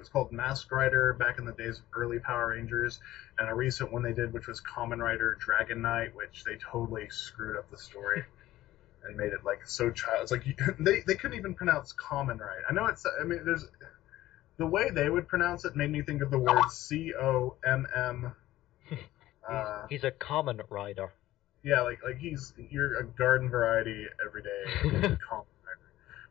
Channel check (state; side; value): quieter; right; 15.3 dB